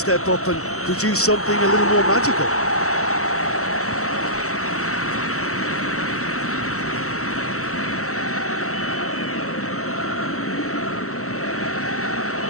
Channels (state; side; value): late; right; 0.64 ms